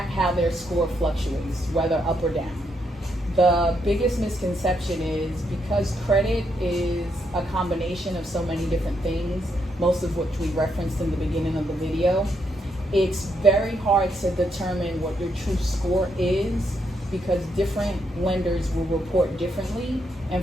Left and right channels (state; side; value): normal; both; correlation 0.78